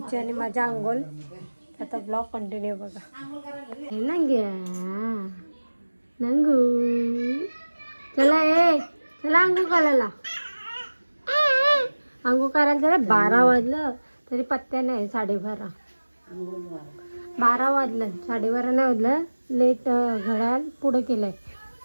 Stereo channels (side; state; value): both; inverted; correlation -1.00